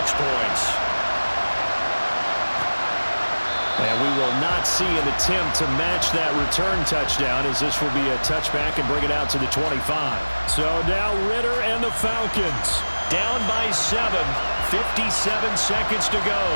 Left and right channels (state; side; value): inverted; both; correlation -1.00